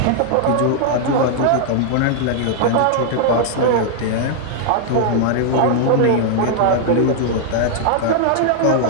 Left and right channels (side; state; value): both; different; correlation -0.01